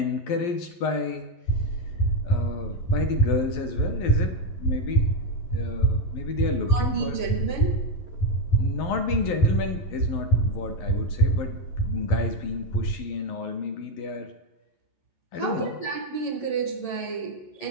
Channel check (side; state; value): right; late; 11 ms